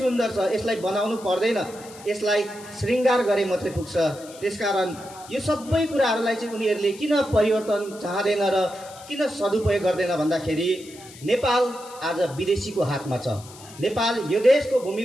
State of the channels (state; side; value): noise; left; hiss, 19 dB below the sound